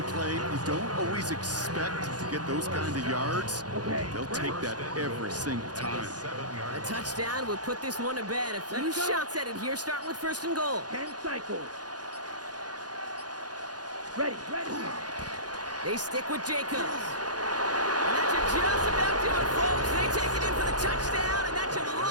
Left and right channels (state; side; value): late; left; 0.69 ms